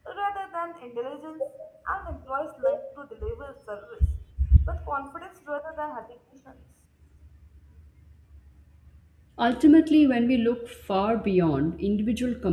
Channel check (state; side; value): identical; both; correlation 1.00